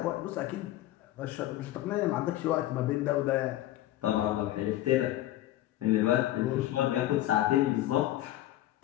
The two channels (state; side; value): quieter; right; 14.5 dB